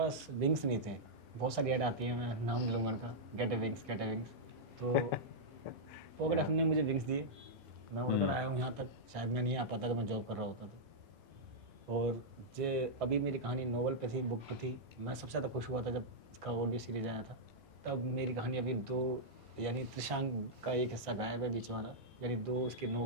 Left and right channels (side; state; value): both; normal; correlation -0.08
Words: विंग्स नहीं थे, बहुत सारी ऐड आती है, मैं नाम नहीं लूँगा उनका, गेट ए विंग्स, तो पॉकेट एफएम ने मुझे विंग्स दिए, मैं उड़कर आया हूँ यहाँ तक, शायद मैं नहीं आ पाता अगर मैं जॉब कर रहा होता तो। और जे अभी मेरी कहानी नोवेल पे थी, बुक पे थी, मैं सबसे ज़्यादा खुश हुआ था जब इसका ऑडियो सीरीज आया था, तब मेरी कहानी अभी 2 यानी त्रिशांक का एक हिस्सा गायब है बीच वाला, यानी 2 उसके